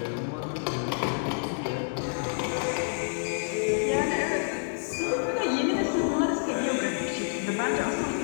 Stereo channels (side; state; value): right; silent; digital silence